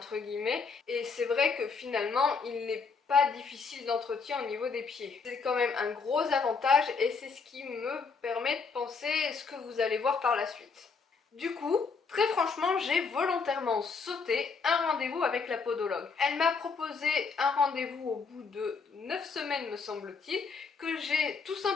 guillemets, et c'est vrai que finalement il n'est pas difficile d'entretien au niveau des pieds. C'est quand même un gros avantage et c'est ce qui me permet de penser ce que vous allez voir par la suite. Du coup, très franchement, j'ai volontairement sauté un rendez-vous avec la podologue. Elle m'a proposé un rendez-vous au bout de 9 semaines me semble-t-il, que j'ai tout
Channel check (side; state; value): right; quieter; 5.0 dB